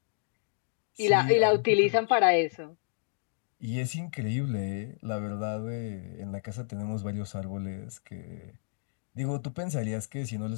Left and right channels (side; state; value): right; silent; digital silence